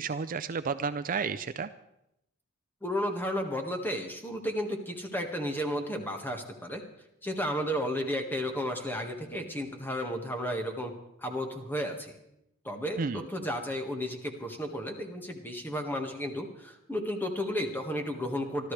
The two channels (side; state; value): both; normal; correlation 0.56